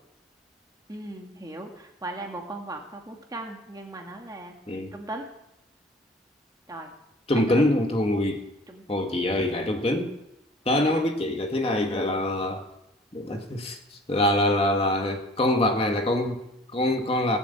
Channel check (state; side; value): normal; both; correlation 0.47